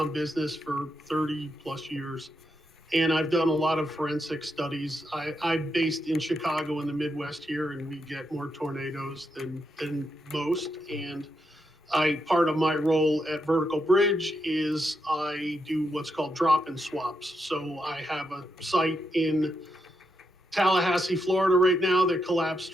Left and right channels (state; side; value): normal; both; correlation 0.82